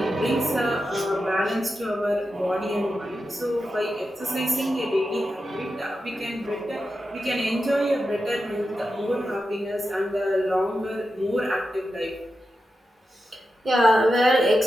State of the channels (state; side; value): normal; both; correlation 0.90